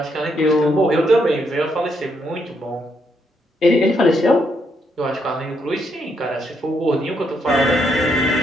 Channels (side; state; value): both; normal; correlation 0.76